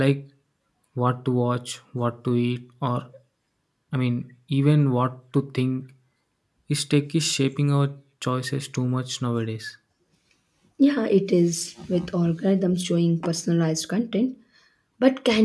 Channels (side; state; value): both; identical; correlation 1.00